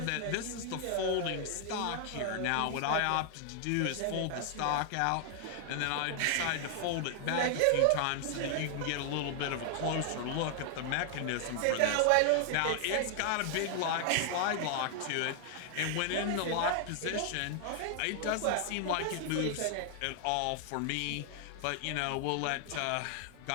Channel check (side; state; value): both; different; correlation 0.00